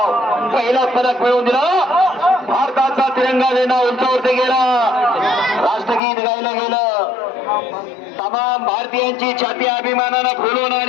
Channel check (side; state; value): right; drops out; at 6.0 s